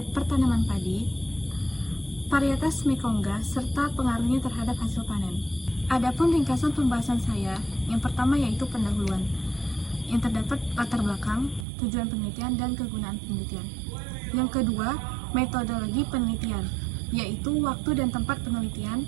Pertanaman Padi, Varietas Mekongga, serta pengaruhnya terhadap hasil panen. Adapun ringkasan pembahasan saya, yang pertama yaitu pendahuluan, yang terdapat latar belakang, tujuan penelitian, dan kegunaan penelitian. Yang kedua, metodologi penelitian, yaitu waktu dan tempat penelitian,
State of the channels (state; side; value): drops out; left; at 11.7 s